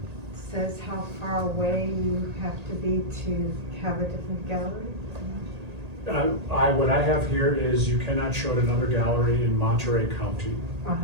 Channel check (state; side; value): late; left; 1.8 ms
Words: says how far away you have to be to have a different gallery? What I have here is you cannot show at another gallery in Monterey County,